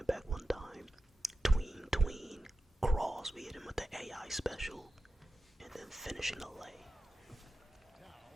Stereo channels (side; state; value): both; normal; correlation 0.92